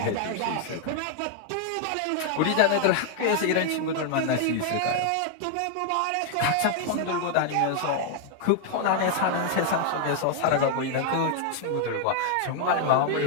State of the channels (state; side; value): different; both; correlation 0.00